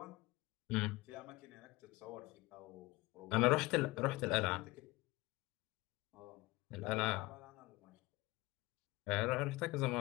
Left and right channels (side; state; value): right; quieter; 21.5 dB